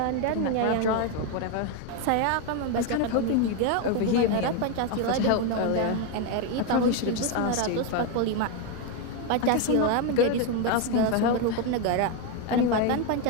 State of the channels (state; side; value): different; both; correlation 0.02